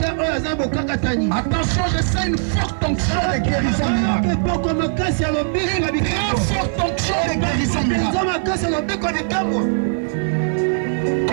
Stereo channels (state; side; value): silent; left; digital silence